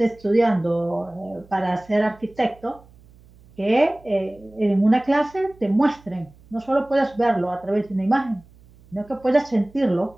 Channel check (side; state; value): right; noise; hum, 26 dB below the sound